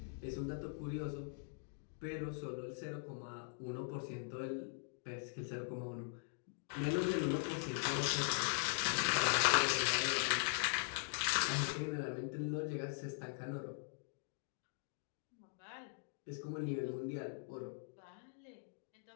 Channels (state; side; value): silent; right; digital silence